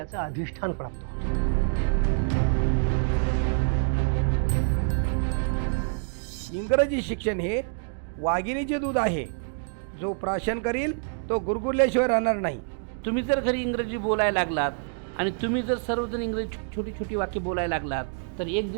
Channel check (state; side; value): silent; left; digital silence